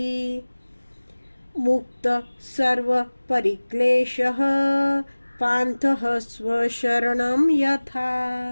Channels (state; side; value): inverted; both; correlation -1.00